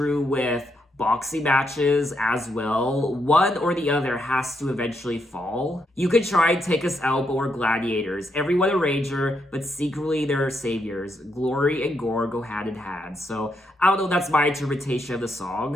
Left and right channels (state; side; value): normal; both; correlation 0.79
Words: with boxing matches as well. One or the other has to eventually fall. You could try and take us out, but we're gladiators. Everyone a rager, but secretly they're saviors. Glory and gore go hand in hand. So I don't know, that's my interpretation of the